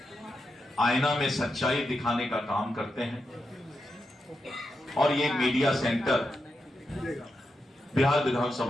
आईना में सच्चाई दिखाने का काम करते हैं। और ये मीडिया सेंटर बिहार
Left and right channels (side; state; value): both; normal; correlation 0.87